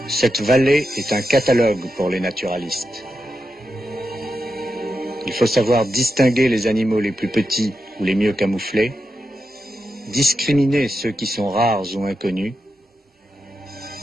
Cette vallée est un catalogue pour les naturalistes. Il faut savoir distinguer les animaux les plus petits ou les mieux camouflés, discriminer ceux qui sont rares ou inconnus,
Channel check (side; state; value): both; normal; correlation 0.88